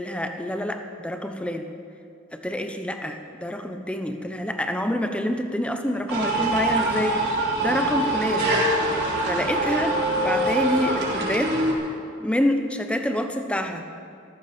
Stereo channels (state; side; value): normal; both; correlation 0.45